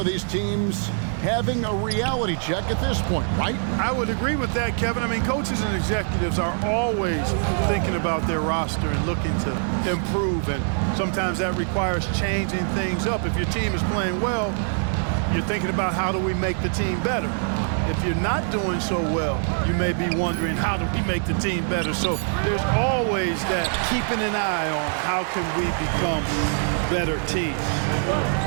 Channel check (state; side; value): silent; left; 63 dB below the other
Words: these teams having a reality check at this point, right? I would agree with that, Kevin. I mean, coaches and executives are always thinking about their roster and looking to improve, and sometimes that requires changing things up. If your team is playing well, you're thinking about how do we make the team better. If you're not doing so well, you may be wondering, how do we make the team better? So there's always that keeping an eye on how can we become better teams.